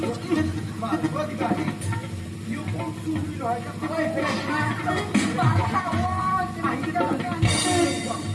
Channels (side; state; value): both; identical; correlation 1.00